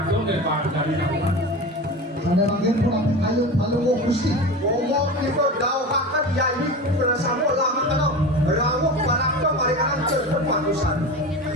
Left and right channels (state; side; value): normal; both; correlation 0.29